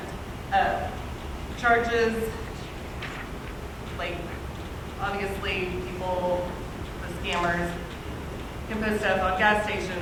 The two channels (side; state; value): both; identical; correlation 1.00